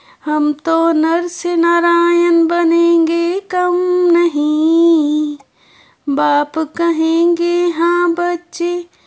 हम तो नर से नारायण बनेंगे कम नहीं। बाप कहेंगे हाँ बच्चे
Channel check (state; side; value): identical; both; correlation 1.00